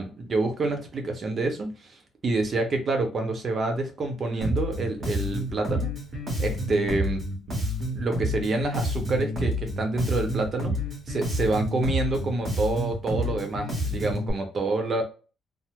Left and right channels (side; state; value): both; normal; correlation 0.72